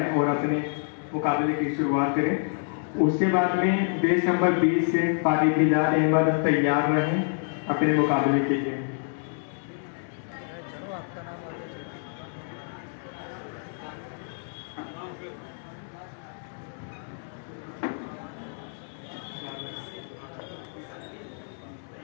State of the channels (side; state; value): right; silent; 60 dB below the other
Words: और अपने मुकाबले की शुरुआत करें। उसके बाद में बेस नंबर 20 से क़ारी बिलाल अहमद तैयार रहें अपने मुकाबले के लिए।